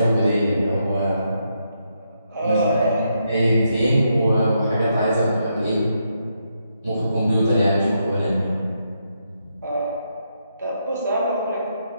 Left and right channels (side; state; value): both; inverted; correlation -0.80